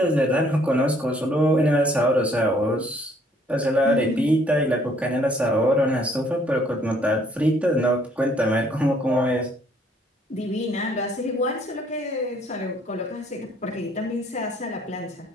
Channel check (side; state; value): both; normal; correlation 0.63